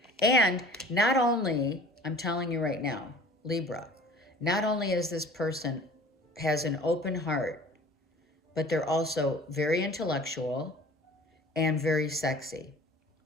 And not only, I'm telling you right now, Libra, not only is this person has an open heart, but they're also very intellectual and very sexy.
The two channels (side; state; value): both; normal; correlation 0.45